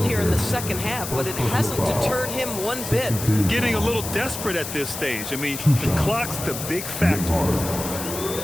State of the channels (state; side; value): noise; left; hiss, 7 dB below the sound